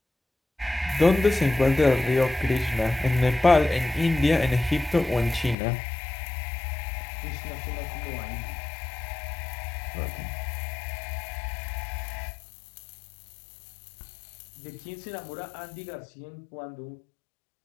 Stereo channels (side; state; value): right; drops out; at 5.6 s